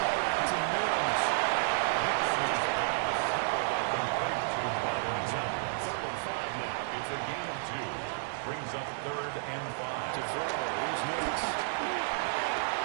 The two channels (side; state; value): left; silent; digital silence